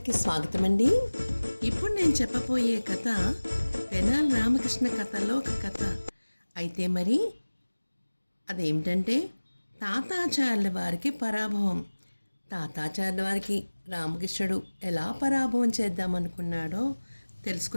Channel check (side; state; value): both; inverted; correlation -1.00